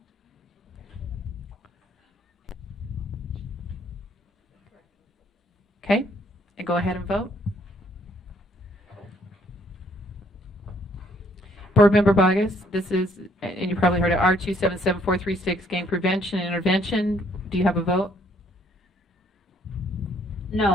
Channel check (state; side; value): normal; both; correlation 0.65